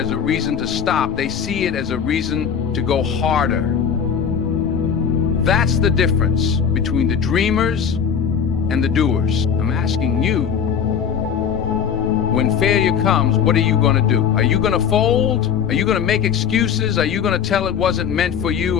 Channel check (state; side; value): quieter; right; 7.4 dB